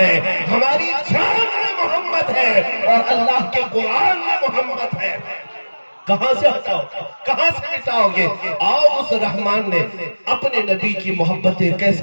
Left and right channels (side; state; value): both; inverted; correlation -1.00